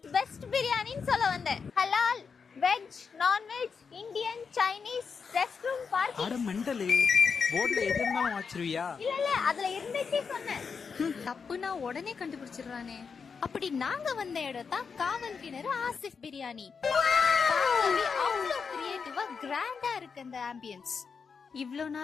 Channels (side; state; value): right; quieter; 5.7 dB